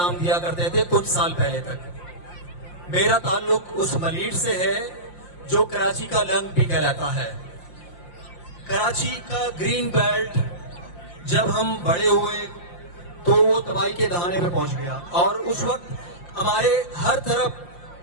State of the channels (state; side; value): late; right; 5.7 ms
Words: دیا کرتے تھے کچھ سال پہلے تک. میرا تعلق اس ملیر سے ہے جو کراچی کا لنگ بھی کہلاتا ہے. کراچی کا گرین بیلٹ جب ہم بڑے ہوئے تو وہ تباہی کے دہانے پہ پہنچ گیا، اور اس وقت ہمارے ہر طرف